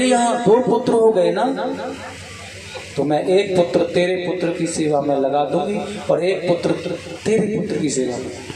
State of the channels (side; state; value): both; identical; correlation 1.00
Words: यहाँ 2 पुत्र हो गए ना, तो मैं 1 पुत्र तेरे पुत्र की सेवा में लगा दूंगी और 1 पुत्र तेरे पुत्र की सेवा में।